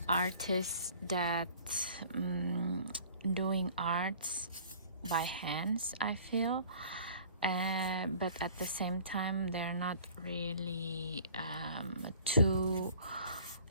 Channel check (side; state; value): both; inverted; correlation -0.49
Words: artists that doing arts by hands, I feel, but at the same time they're not really too